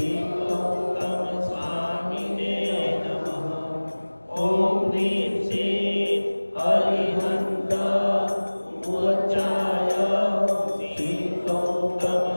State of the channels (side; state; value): both; inverted; correlation -1.00